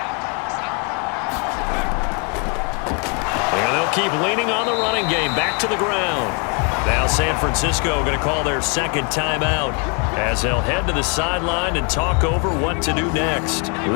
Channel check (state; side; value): quieter; right; 36.1 dB